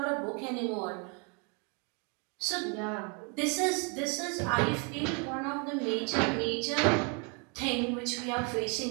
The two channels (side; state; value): left; quieter; 34.6 dB